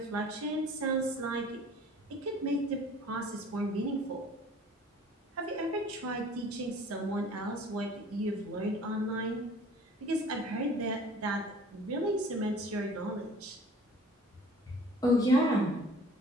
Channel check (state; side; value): normal; both; correlation 0.49